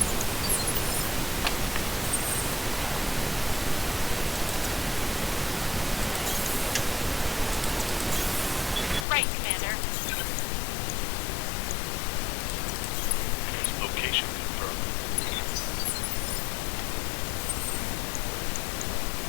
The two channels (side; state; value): right; drops out; at 9.1 s